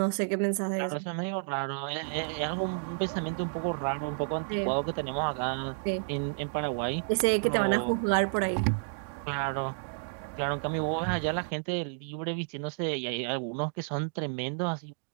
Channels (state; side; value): silent; left; digital silence